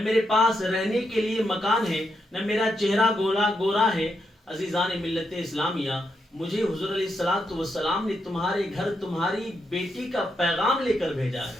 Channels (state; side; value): normal; both; correlation 0.82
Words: میرے پاس رہنے کے لیے مکان ہے, نہ میرا چہرہ گورا ہے. عزیزان ملت اسلامیہ, مجھے حضور علیہ الصلوۃ والسلام نے تمہارے گھر تمہاری بیٹی کا پیغام لے کر بھیجا ہے.